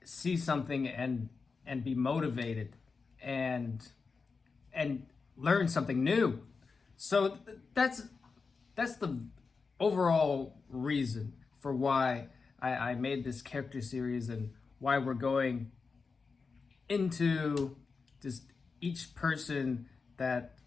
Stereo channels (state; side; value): quieter; right; 4.7 dB